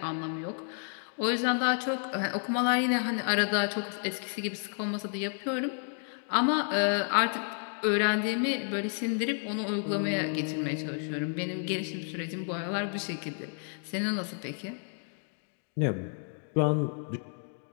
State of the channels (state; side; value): silent; right; 56 dB below the other